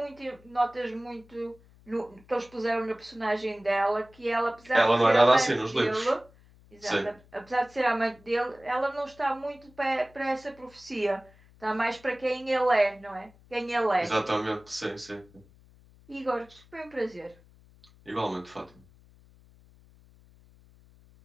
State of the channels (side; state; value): left; noise; hum, 26 dB below the sound